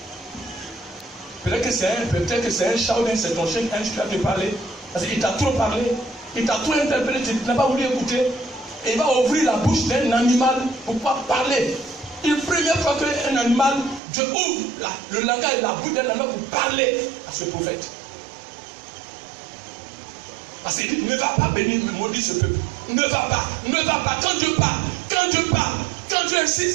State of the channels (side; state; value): left; drops out; at 14.0 s